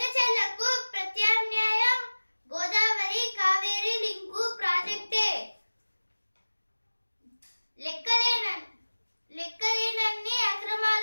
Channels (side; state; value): both; inverted; correlation -1.00